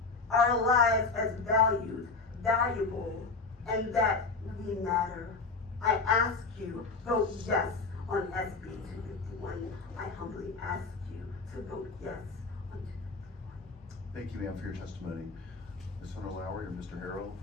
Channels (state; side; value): quieter; right; 4.1 dB